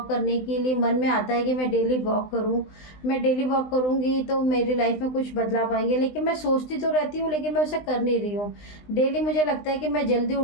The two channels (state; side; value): late; right; 20 ms